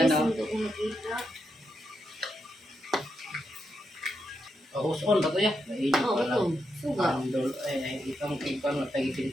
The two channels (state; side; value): normal; both; correlation 0.83